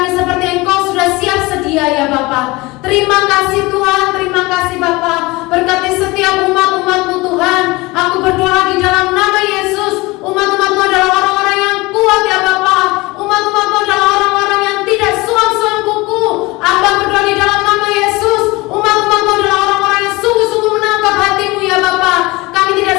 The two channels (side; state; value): right; quieter; 22.5 dB